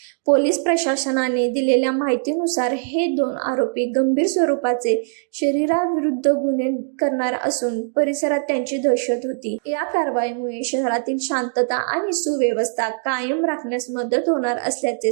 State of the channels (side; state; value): left; silent; digital silence